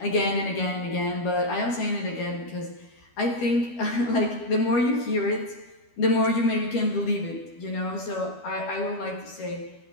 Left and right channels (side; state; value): right; late; 12 ms